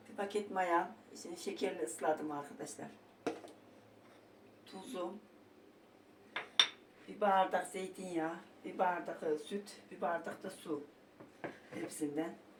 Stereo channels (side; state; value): both; identical; correlation 1.00